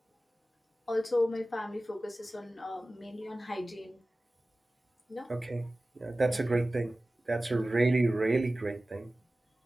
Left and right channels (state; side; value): normal; both; correlation 0.97